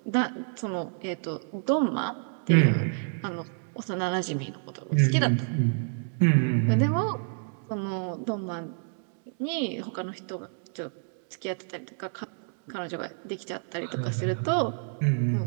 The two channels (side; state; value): left; silent; digital silence